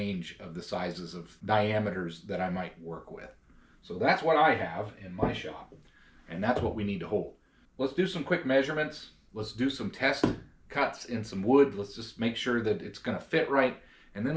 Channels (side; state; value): both; identical; correlation 1.00